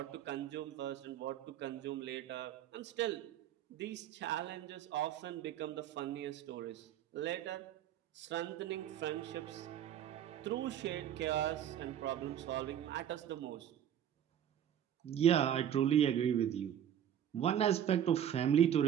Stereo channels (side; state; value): left; quieter; 10.0 dB